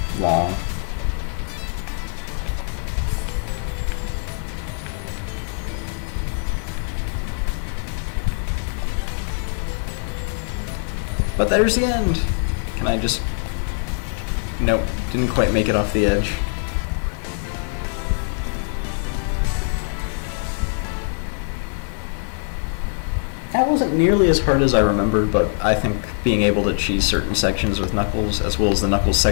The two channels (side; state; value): right; silent; 64 dB below the other